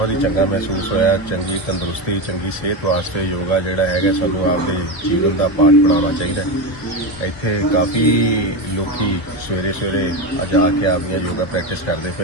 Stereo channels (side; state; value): right; late; 2.0 ms